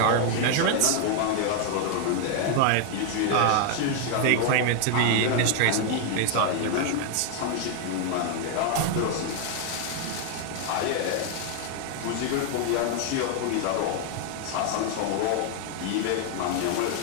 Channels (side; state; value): both; different; correlation 0.00